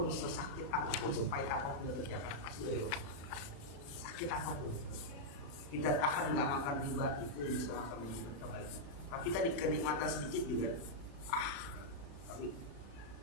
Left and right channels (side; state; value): right; late; 35 ms